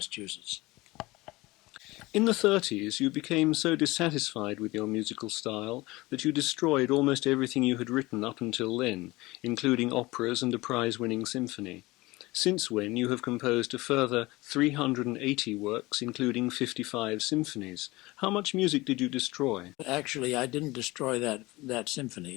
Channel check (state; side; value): quieter; right; 21.0 dB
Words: In the 30s, you became so dissatisfied with your musical style that you destroyed almost everything you had written up until then, including operas and a prize-winning symphony. Since when you have composed a further 380 works, including 55 symphonies. How much music did you destroy? Actually, I didn't destroy that